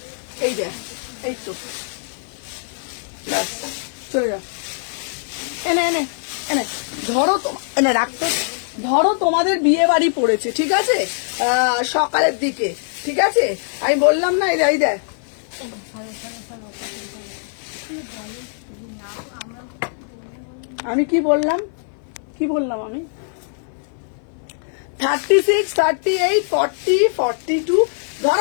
এই দেখ, এই তো ব্যাস, চলে যাও, এনে এনে এনে ধরো, এনে রাখতে, ধরো তোমাদের বিয়ে বাড়ি পড়েছে, ঠিক আছে, সকালের দিকে, ঠিক আছে, আমি বললাম না, এই দেখ, আমি কি বললাম আমি 36, 38, 40, 42,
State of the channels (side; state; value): right; silent; 61 dB below the other